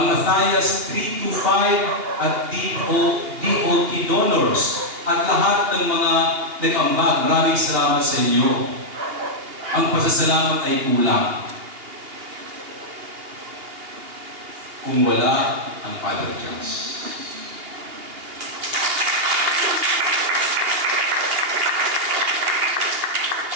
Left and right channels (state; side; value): late; left; 2.8 ms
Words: Matthias 325 at DOT Donors, at lahat ng mga nag-ambag. Maraming salamat sa inyo. Ang pasasalamat ay kulang kung wala ang Father Charles.